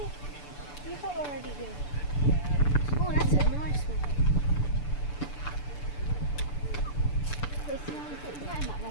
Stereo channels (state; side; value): late; right; 6.9 ms